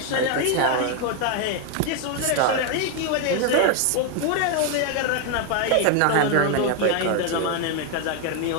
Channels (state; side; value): different; both; correlation 0.01